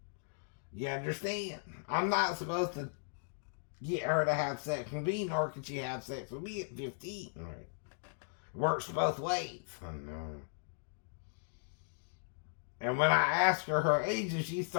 You understand? I'm not supposed to get her to have sex with me, nor can she have sex with me at 15. Right? It works both ways. I know. And when I asked her age and she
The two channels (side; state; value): right; silent; digital silence